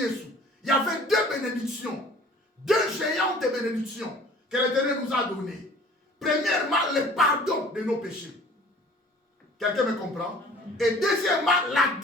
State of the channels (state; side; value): normal; both; correlation 0.49